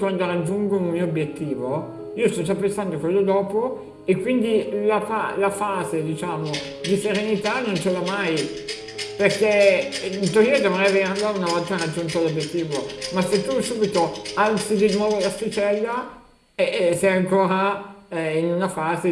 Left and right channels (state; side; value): identical; both; correlation 1.00